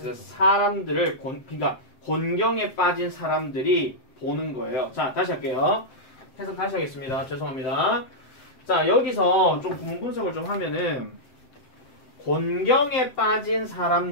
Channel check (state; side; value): late; right; 7.7 ms